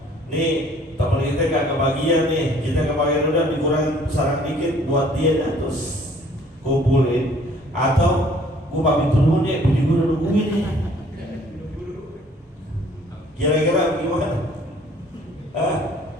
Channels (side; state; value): both; normal; correlation 0.57